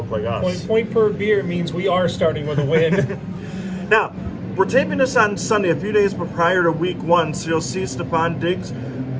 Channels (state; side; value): identical; both; correlation 1.00